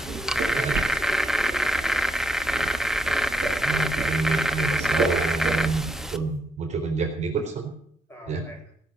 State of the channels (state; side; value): normal; both; correlation 0.77